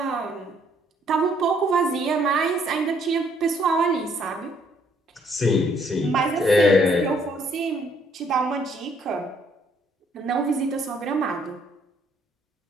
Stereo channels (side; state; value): both; normal; correlation 0.66